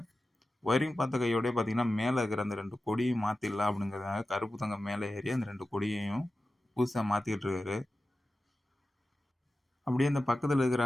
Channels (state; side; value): normal; both; correlation 0.94